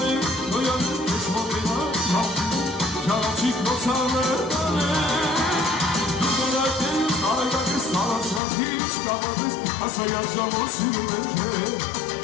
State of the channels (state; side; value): drops out; right; at 8.4 s